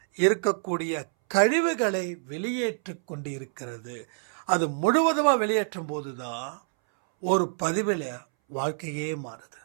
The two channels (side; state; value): left; silent; 60 dB below the other